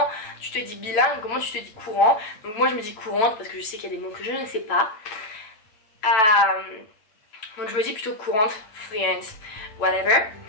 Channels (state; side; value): late; right; 9.0 ms